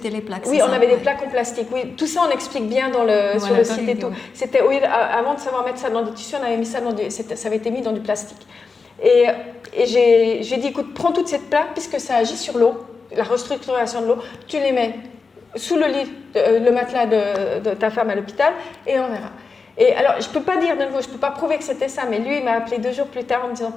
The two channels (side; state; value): right; quieter; 4.6 dB